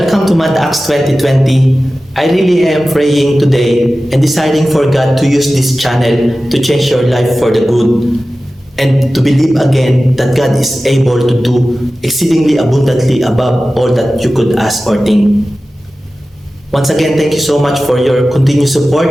to Mad Acts 2020. I really am praying today and deciding for God to use this channel to change your life for the good and to believe again that God is able to do exceedingly abundantly above all that you could ask or think. Once again, thank you so much for your continued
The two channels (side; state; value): both; normal; correlation 0.95